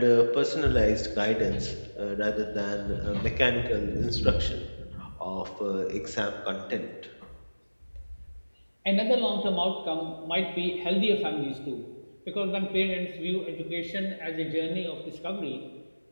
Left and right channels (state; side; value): inverted; both; correlation -1.00